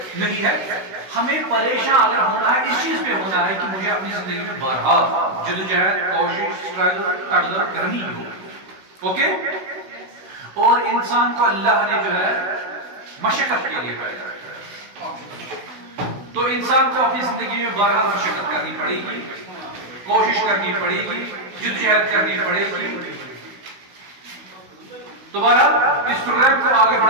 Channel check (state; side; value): late; left; 16 ms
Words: نہیں ہے. ہمیں پریشان اگر ہونا ہے اس چیز پہ ہونا ہے کہ مجھے اپنی زندگی میں بہرحال جدوجہد، کوشش، اسٹرگل، تقدر کرنی ہو. اوکے، اور انسان کو اللہ نے جو ہے مشقت کے لیے پیدا کیا ہے، تو انسان کو اپنی زندگی میں بہرحال مشقت کرنی پڑے گی، کوشش کرنی پڑے گی، جدوجہد کرنی پڑے گی. تو بہرحال اس پروگرام کو آگے